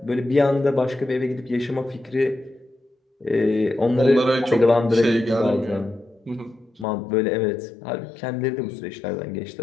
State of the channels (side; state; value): right; drops out; at 6.9 s